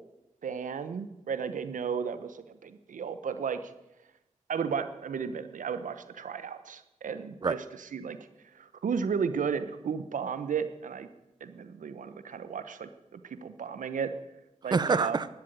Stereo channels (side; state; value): left; quieter; 5.6 dB